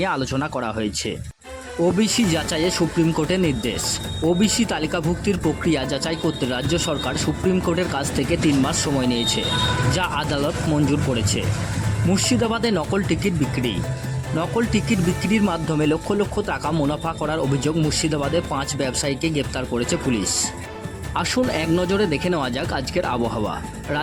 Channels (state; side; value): identical; both; correlation 1.00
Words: আলোচনা করা হয়েছে। ওবিসি যাচাইয়ে সুপ্রিম কোর্টের নির্দেশ। ওবিসি তালিকাভুক্তির প্রক্রিয়া যাচাই করতে রাজ্য সরকার সুপ্রিম কোর্টের কাছ থেকে 3 মাস সময় নিয়েছে, যা আদালত মঞ্জুর করেছে। মুর্শিদাবাদে নকল টিকিট বিক্রি। নকল টিকিট বিক্রির মাধ্যমে লক্ষ লক্ষ টাকা মুনাফা করার অভিযোগ মুর্শিদাবাদে 5 ব্যবসায়ীকে গ্রেপ্তার করেছে পুলিশ। আসুন এক নজরে দেখে নেওয়া যাক আজকের আবহাওয়া।